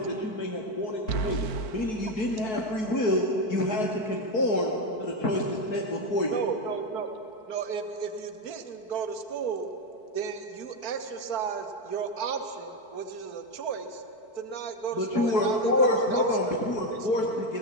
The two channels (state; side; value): late; right; 4.6 ms